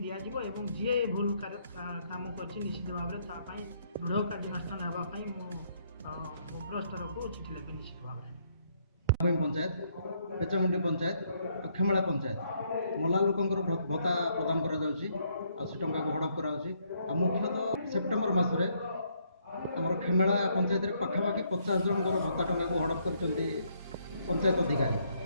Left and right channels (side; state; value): both; inverted; correlation -0.71